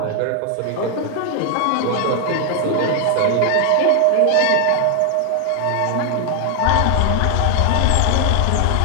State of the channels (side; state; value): both; different; correlation 0.00